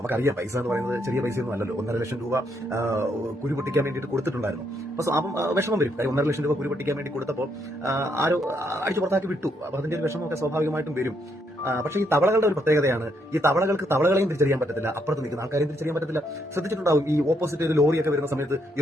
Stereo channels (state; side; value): normal; both; correlation 0.75